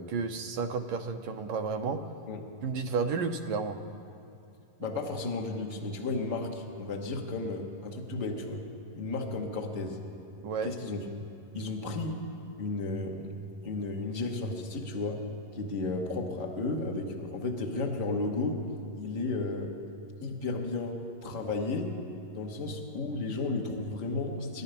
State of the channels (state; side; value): late; left; 11 ms